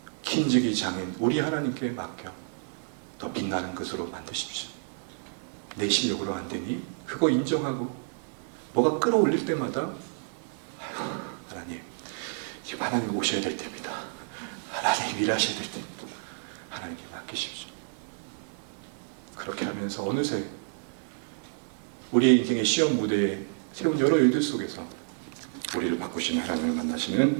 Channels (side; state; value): left; silent; digital silence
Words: kin직이 장인 우리 하나님께 맡겨 더 빛나는 것으로 만드십시오. 내 실력으로 안 되니 그거 인정하고 뭐가 끌어올릴 때마다 아이고 하나님, 지금 하나님 오셔야 될 때입니다. 하나님 일하셔야 될 때입니다. 하나님께 맡기십시오. 그렇게 하면서 어느새 우리의 인생의 시험 무대에 세운 여러 일들 속에서 우리를 바꾸시는 하나님을